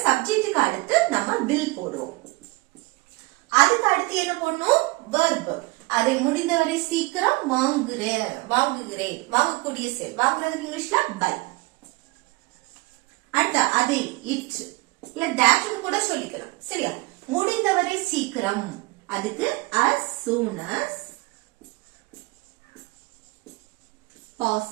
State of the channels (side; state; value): left; quieter; 23.6 dB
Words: சப்ஜெக்ட்டுக்கு அடுத்து நம்ம வில் போடுவோம். அதுக்கு அடுத்து என்ன போடணும், verb. அதை முடிந்தவரை சீக்கிரம் வாங்குறேன், வாங்குகிறேன், வாங்கக்கூடிய செயல். வாங்குறதுக்கு இங்கிலீஷ்ல buy. அடுத்து அதை it இல்ல that கூட சொல்லிக்கலாம். சரியா? முடிந்தவரை சீக்கிரம், அதுக்கு as soon as